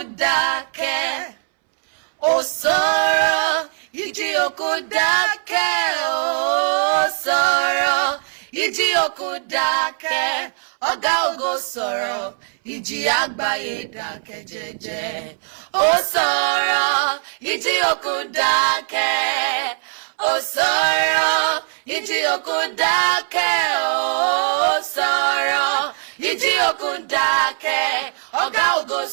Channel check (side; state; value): left; silent; 64 dB below the other